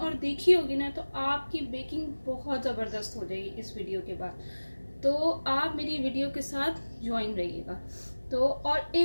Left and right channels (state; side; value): inverted; both; correlation -1.00